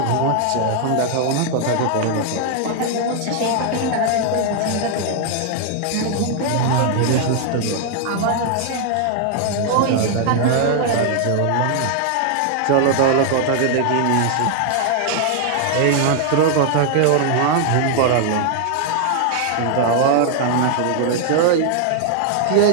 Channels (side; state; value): both; different; correlation 0.00